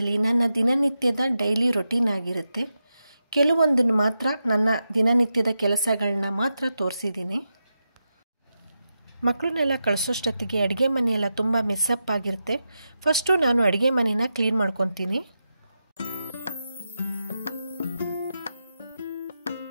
ನನ್ನ ದಿನನಿತ್ಯದ ಡೈಲಿ ರೊಟೀನ್ ಆಗಿರುತ್ತೆ. ಕೆಲವೊಂದನ್ನು ಮಾತ್ರ ನನ್ನ ದಿನನಿತ್ಯದ ಕೆಲಸಗಳನ್ನ ಮಾತ್ರ ತೋರಿಸಿದ್ದೀನಿ. ಮಕ್ಕಳನ್ನೆಲ್ಲ ಕಳಿಸೋಷ್ಟೊತ್ತಿಗೆ ಅಡುಗೆ ಮನೆಯೆಲ್ಲ ತುಂಬ ಮೆಸ್ಸಪ್ ಆಗಿರುತ್ತೆ. ಫಸ್ಟು ನಾನು ಅಡುಗೆ ಮನೆನ ಕ್ಲೀನ್ ಮಾಡ್ಕೊತೀನಿ.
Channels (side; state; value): both; inverted; correlation -0.89